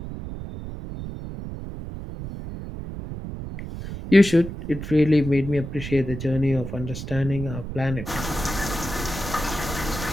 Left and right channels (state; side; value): noise; right; rumble, 8 dB below the sound